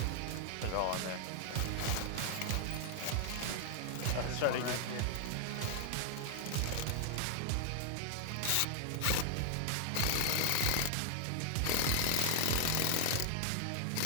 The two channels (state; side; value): different; both; correlation 0.00